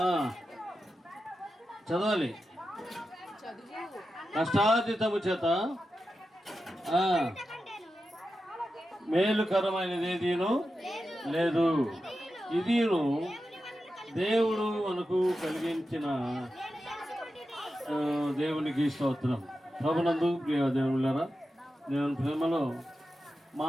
చదవాలి. కష్టార్జితము చేత మేలుకరమైనది ఏదీను లేదు. ఇదిను దేవుడు మనకు కలిగించిన దేవునికి స్తోత్రం. ప్రభునందు ప్రియ దేవునులారా, దేవుని ప్రేమలో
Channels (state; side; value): normal; both; correlation 0.91